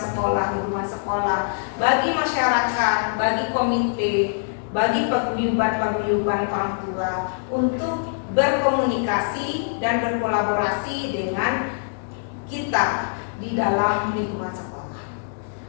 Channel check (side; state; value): right; silent; digital silence